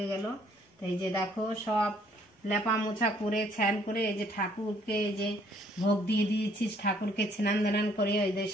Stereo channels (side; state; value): both; normal; correlation 0.63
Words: গেল। তাই যে দেখো সব লেপা মোছা করে স্নান করে এই যে ঠাকুরকে এই যে ভোগ দিয়ে দিয়েছি। ঠাকুরকে স্নান দান করে ওই যে